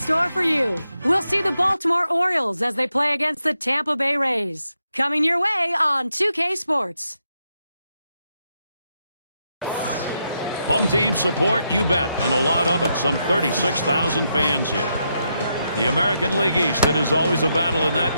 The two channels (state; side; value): inverted; both; correlation -0.82